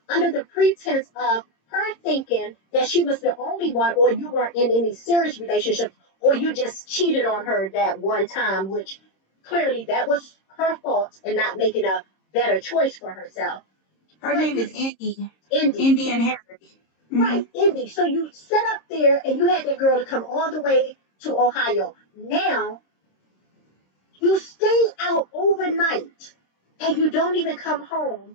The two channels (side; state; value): right; late; 26 ms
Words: under the pretense of her thinking that she was the only one, or you weren't in any serious relationship, or you just cheated on her that one time, which clearly that was her fault and not making a better choice for herself. Her But name you, is Indy. Indy, Indy and Harry. Mm-hmm. right, Indy. So you sat up there and you had that girl to come all the way to Ohio. Now you stay out overnight and you don't even come home.